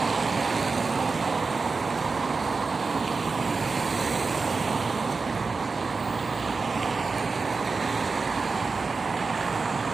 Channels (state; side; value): quieter; left; 4.3 dB